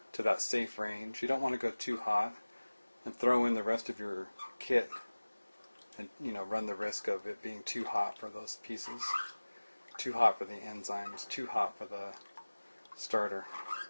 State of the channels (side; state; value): both; inverted; correlation -1.00